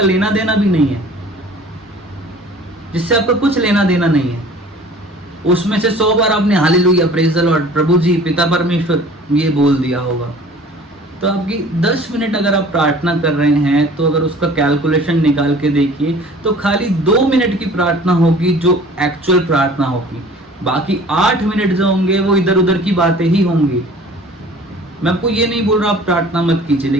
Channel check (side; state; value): both; normal; correlation 0.47